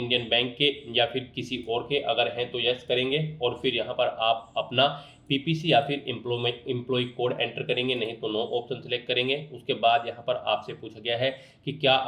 बैंक के या फिर किसी और के, अगर हैं तो यस करेंगे और फिर यहाँ पर आप अपना पीपीसी या फिर एम्प्लॉय कोड एंटर करेंगे, नहीं तो नो ऑप्शन सेलेक्ट करेंगे। उसके बाद यहाँ पर आपसे पूछा गया है कि क्या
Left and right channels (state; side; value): identical; both; correlation 1.00